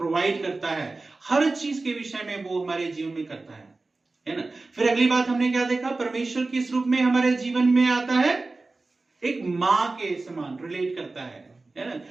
करता है, हर चीज के विषय में वो हमारे जीवन में करता है ना। फिर अगली बात हमने क्या देखा, परमेश्वर किस रूप में हमारे जीवन में आता है, एक माँ के समान रिलेट करता है ना।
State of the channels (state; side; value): quieter; left; 3.4 dB